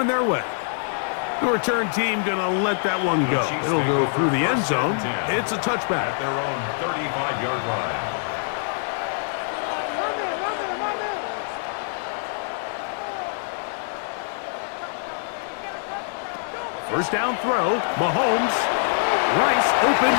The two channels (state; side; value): silent; right; digital silence